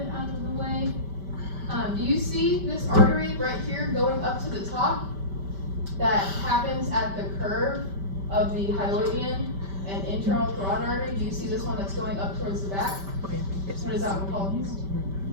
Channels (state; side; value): late; left; 5.1 ms